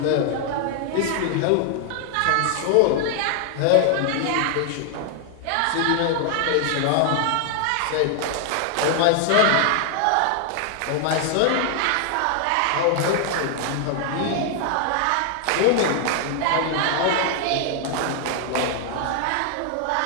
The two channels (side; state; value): both; different; correlation 0.00